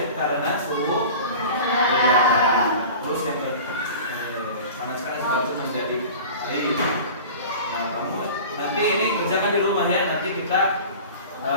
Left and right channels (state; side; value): inverted; both; correlation -0.38